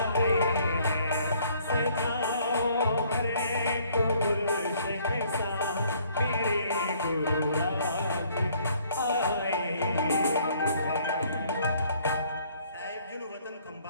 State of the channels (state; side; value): inverted; both; correlation -0.62